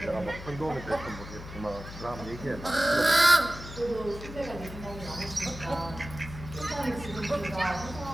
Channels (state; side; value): noise; left; hum, 12 dB below the sound